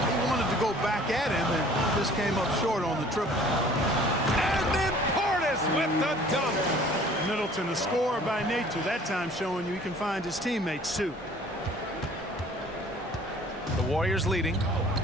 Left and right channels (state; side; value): normal; both; correlation 0.52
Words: he wanted to go back at him and just came up short on the triple. And then Portis with the dunk. Middleton, a scorer by nature, that time showing you he can find his teammates too. The Warriors leading.